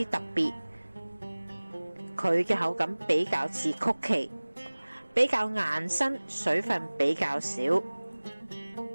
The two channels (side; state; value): both; inverted; correlation -1.00